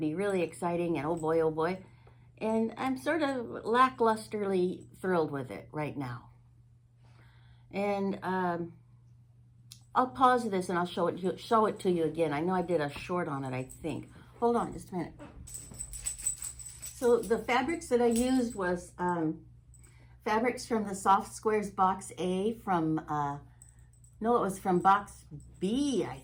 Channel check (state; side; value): identical; both; correlation 1.00